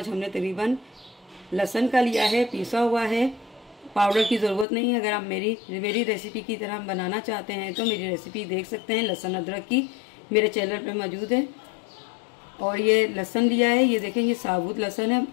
हमने तकरीबन लहसुन का लिया है पीसा हुआ है। पाउडर की ज़रूरत नहीं है। अगर आप मेरी रेसिपी की तरह बनाना चाहते हैं तो मेरी रेसिपी देख सकते हैं लहसुन अदरक की, मेरे चैनल पे मौजूद है। और ये लहसुन लिया है, ये देखें ये साबुत लहसुन है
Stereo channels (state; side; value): drops out; right; at 4.7 s